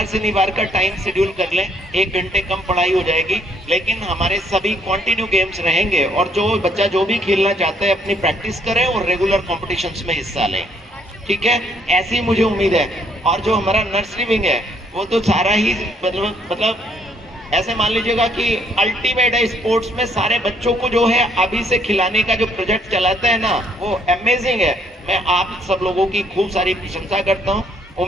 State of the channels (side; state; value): both; normal; correlation 0.67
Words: शनिवार का टाइम शेड्यूल कर लें। 1 घंटे कम पढ़ाई हो जाएगी, लेकिन हमारे सभी कंटिन्यू गेम्स रहेंगे। और जो बच्चा जो भी खेलना चाहता है अपनी प्रैक्टिस करें और रेगुलर कॉम्पिटिशन्स में हिस्सा लें, ठीक है। ऐसी मुझे उम्मीद है। और जो हमारा नर्सरी विंग है, वो तो सारा ही मतलब ऐसे मान लीजिएगा कि अल्टीमेट है स्पोर्ट्स में, सारे बच्चों को जो है अभी से खिलाने का जो प्रोजेक्ट चलाता है ना, वो अमेजिंग है। मैं आप सब लोगों की खूब सारी प्रशंसा करता हूँ।